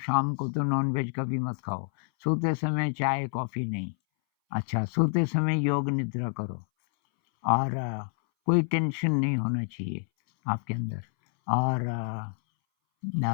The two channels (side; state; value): right; silent; 59 dB below the other